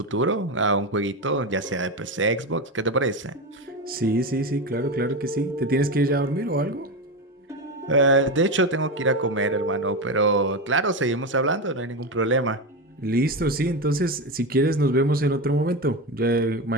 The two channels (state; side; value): normal; both; correlation 0.17